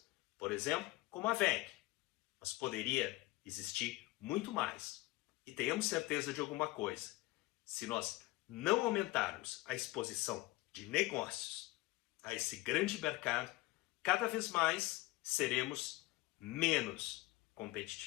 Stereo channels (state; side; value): quieter; right; 20.1 dB